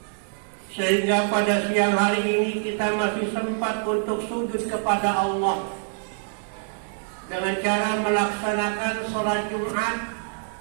sehingga pada siang hari ini kita masih sempat untuk sujud kepada Allah dengan cara melaksanakan sholat Jumat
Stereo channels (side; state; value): left; silent; digital silence